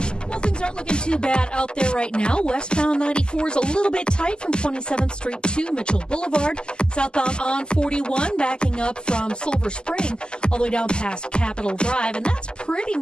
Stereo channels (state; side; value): late; right; 0.047 ms